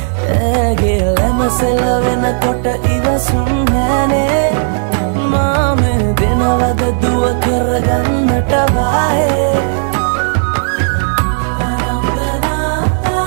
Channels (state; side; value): silent; left; digital silence